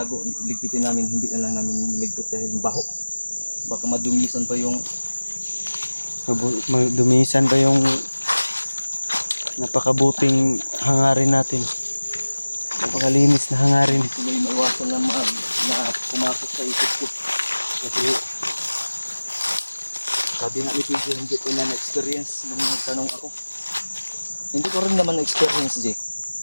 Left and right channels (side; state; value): both; inverted; correlation -1.00